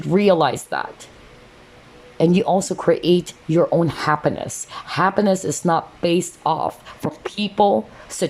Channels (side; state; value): both; identical; correlation 1.00